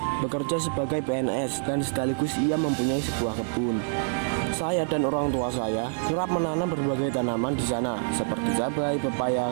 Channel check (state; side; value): silent; left; digital silence